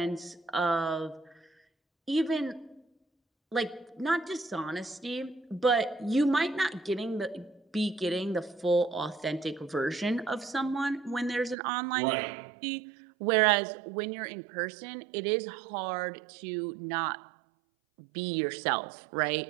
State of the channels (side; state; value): left; drops out; at 11.6 s